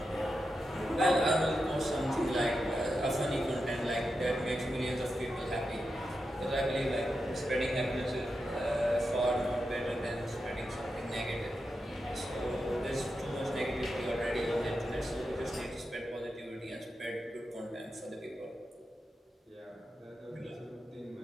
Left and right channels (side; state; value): both; normal; correlation 0.88